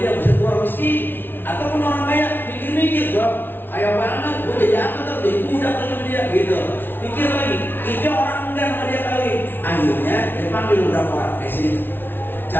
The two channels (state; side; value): late; right; 0.10 ms